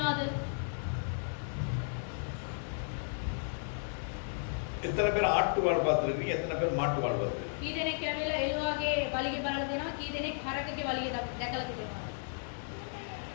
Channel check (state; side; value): silent; right; digital silence